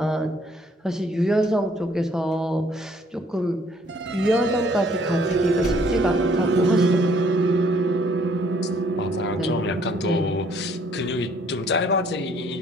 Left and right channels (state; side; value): normal; both; correlation 0.62